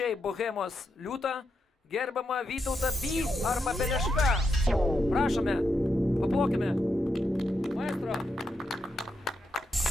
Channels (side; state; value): both; normal; correlation 0.83